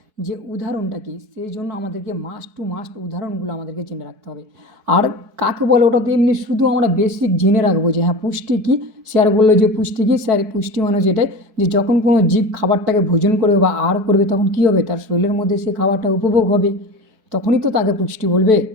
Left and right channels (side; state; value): left; late; 4.6 ms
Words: যে উদাহরণটা কি, সেই জন্য আমাদেরকে মাস্ট টু মাস্ট উদাহরণগুলো আমাদেরকে জেনে রাখতে হবে। আর কাকে বলে ওটা তো এমনি শুধু আমরা বেসিক জেনে রাখবো যে হ্যাঁ পুষ্টি কী। স্যার বললো যে পুষ্টি কী, স্যার পুষ্টি মানে যেটাই, যে যখন কোনো জীব খাবারটাকে ভোজন করবে বা আহার করবে তখন কী হবে, তার শরীরের মধ্যে সে খাবারটা উপভোগ হবে, তখনই তো তাকে পুষ্টি বলবে।